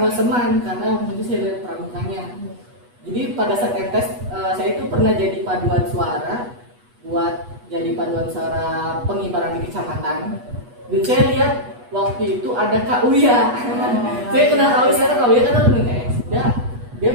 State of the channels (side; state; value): left; late; 8.2 ms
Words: Seman, karena waktu itu saya lihat pramukanya. Jadi pada saat MTS saya itu pernah jadi paduan suara, buat jadi paduan suara pengibaran di kecamatan. Dan saya lihat waktu itu ada Kak Uya. Saya kenal Kak Uya, karena Kak Uya kan ada MTS.